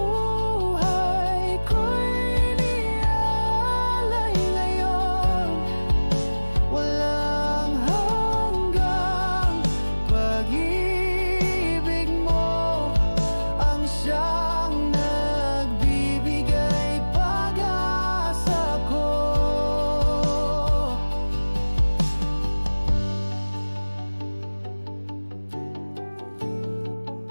ko'y niaalay ngayon. Walang hanggang pag-ibig mo ang siyang nagbibigay pag-asa ko.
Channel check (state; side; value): inverted; both; correlation -1.00